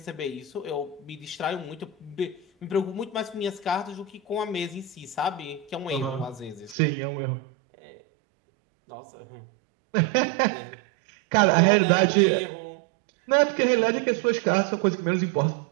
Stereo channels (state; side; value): drops out; left; at 6.8 s